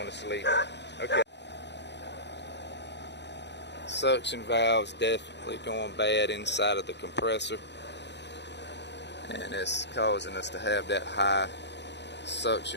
to sleep. Okay. Suction valves definitely going bad inside of the compressor, and it's causing us to have that high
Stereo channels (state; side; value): late; right; 0.51 ms